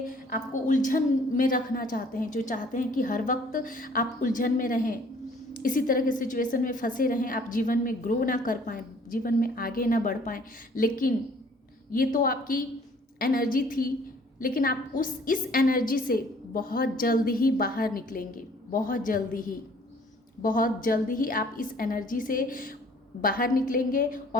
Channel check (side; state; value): both; normal; correlation 0.56